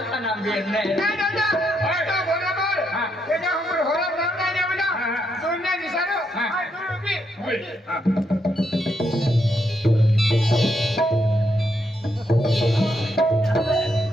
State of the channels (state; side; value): normal; both; correlation 0.78